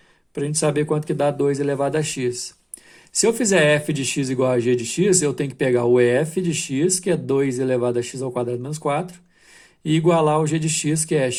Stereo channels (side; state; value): both; identical; correlation 1.00